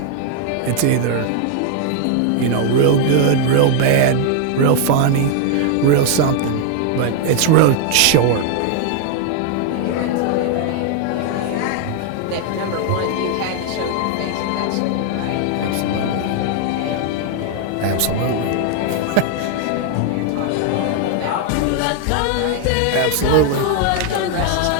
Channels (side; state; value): both; different; correlation 0.00